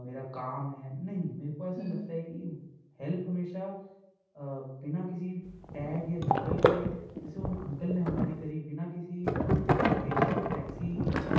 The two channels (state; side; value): identical; both; correlation 1.00